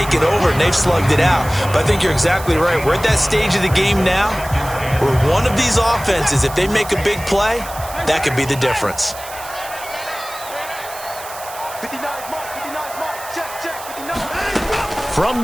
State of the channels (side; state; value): right; noise; hiss, 14 dB below the sound